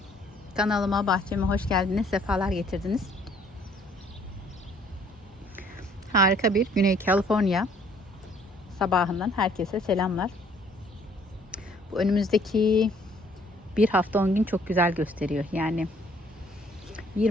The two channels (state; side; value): normal; both; correlation 0.61